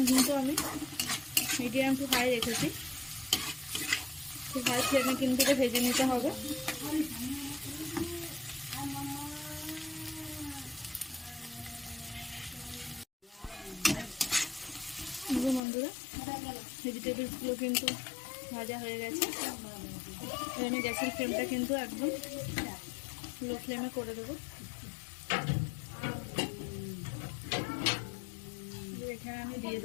কিন্তু আমি মিডিয়াম টু হাই রেখেছি। হাই ফ্লেমে কিন্তু এটা ভেজে নিতে হবে। বন্ধুরা ভেজিটেবলসগুলো কিন্তু ভাজা হয়ে গেছে। আমি গ্যাসের ফ্লেমটা কিন্তু একদম লো ফ্লেমে করে দেবো। এখানে আমি দিয়ে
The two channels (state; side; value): drops out; right; at 15.6 s